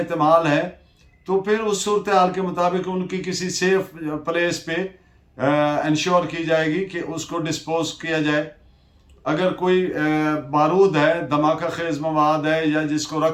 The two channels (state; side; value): identical; both; correlation 1.00